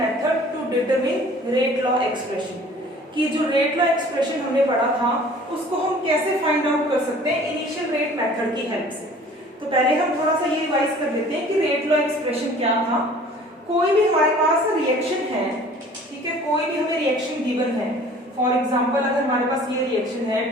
to determine rate law expression. कि जो रेट लॉ एक्सप्रेशन हमने पढ़ा था उसको हम कैसे फाइंड आउट कर सकते हैं इनिशियल रेट मेथड की हेल्प से। तो पहले हम थोड़ा सा ये रिवाइज कर लेते हैं कि रेट लॉ एक्सप्रेशन क्या था। कोई भी हमारे पास रिएक्शन है, ठीक है, कोई भी हमें रिएक्शन गिवन है। फॉर एग्जाम्पल अगर हमारे पास ये रिएक्शन है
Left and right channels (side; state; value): both; normal; correlation 0.49